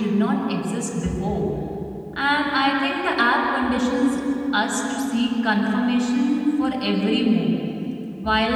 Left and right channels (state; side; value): identical; both; correlation 1.00